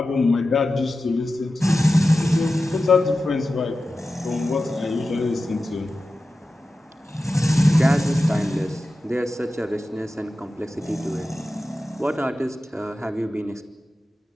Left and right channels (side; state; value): both; normal; correlation 0.93